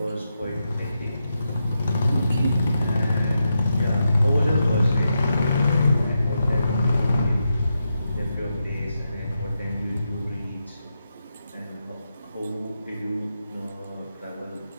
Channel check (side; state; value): both; inverted; correlation -0.86